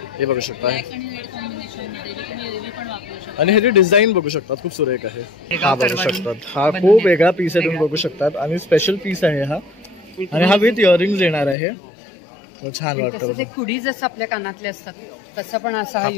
हे बघू शकता आणि ह्याची डिझाईन बघू शकतात, खूप सुरेख आहे. हा बघू शकतात, हा खूप वेगळा पीस आहे, तुम्ही बघू शकतात आणि स्पेशल पीस आहे हा. आणि हा विथ इयरिंग्स येणार आहे, छान वाटतं. कुडी जसं आपल्या कानातले असतात तसं पण असा हा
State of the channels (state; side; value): drops out; right; at 11.6 s